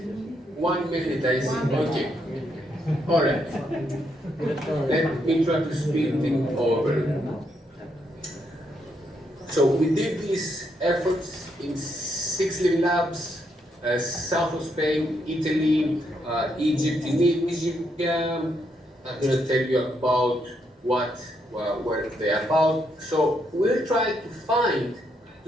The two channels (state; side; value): normal; both; correlation 0.77